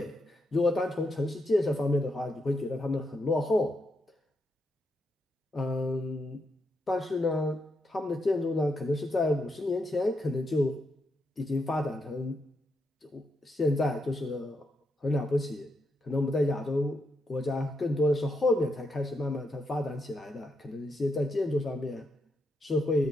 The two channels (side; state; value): both; normal; correlation 0.81